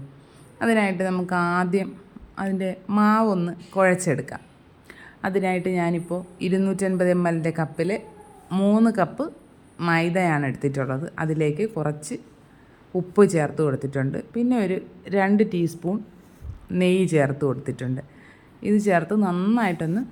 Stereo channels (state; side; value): identical; both; correlation 1.00